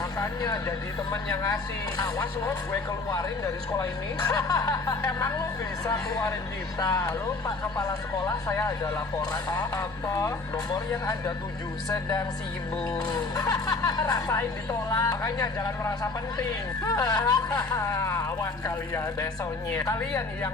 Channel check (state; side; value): quieter; right; 3.7 dB